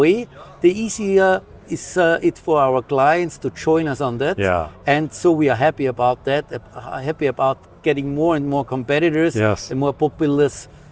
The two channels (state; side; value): identical; both; correlation 1.00